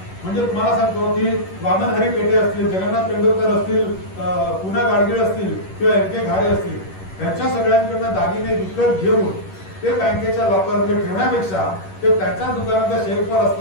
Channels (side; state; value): right; late; 11 ms